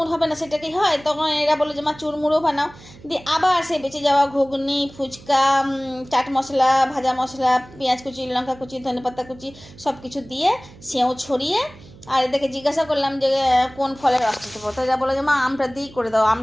হবে না সেটা কি হয়? তখন এরা বলে যে মা চুরমুরও বানাও। দিয়ে আবার সে বেঁচে যাওয়া ঘুগনি, ফুচকা, চাট মশলা, ভাজা মশলা, পেঁয়াজ কুচি, লঙ্কা কুচি, ধনেপাতা কুচি সব কিছু দিয়ে সেও ছড়িয়ে, আর এদেরকে জিজ্ঞাসা করলাম যে কোন ফলের রসটা দেবো। তো এরা বলে যে মা আমটা দিয়েই করে দাও,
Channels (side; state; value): right; noise; hum, 21 dB below the sound